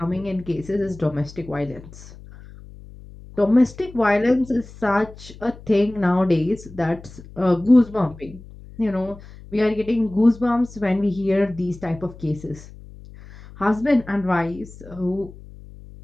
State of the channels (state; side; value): noise; left; hum, 18 dB below the sound